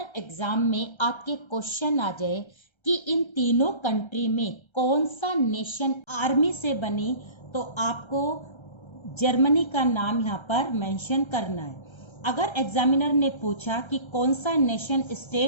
एग्जाम में आपके क्वेश्चन आ जाए कि इन तीनों कंट्री में कौन सा नेशन आर्मी से बनी, तो आपको जर्मनी का नाम यहाँ पर मेंशन करना है। अगर एग्जामिनर ने पूछा कि कौन सा नेशन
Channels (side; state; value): right; late; 1.3 ms